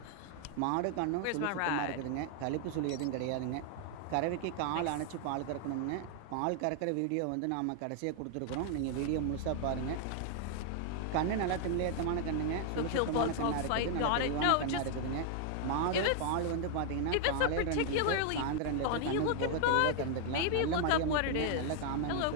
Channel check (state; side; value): different; both; correlation 0.00